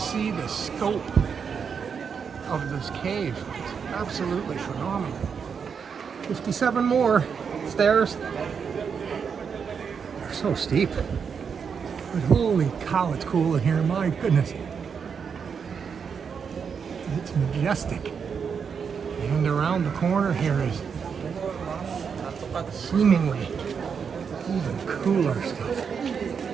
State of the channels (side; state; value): left; quieter; 6.5 dB